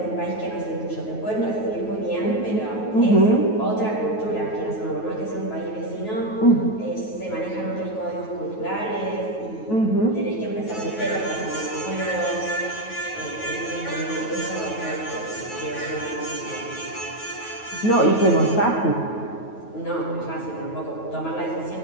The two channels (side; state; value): right; late; 9.2 ms